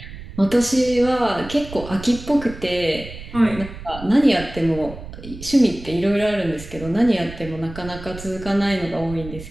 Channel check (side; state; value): right; noise; rumble, 13 dB below the sound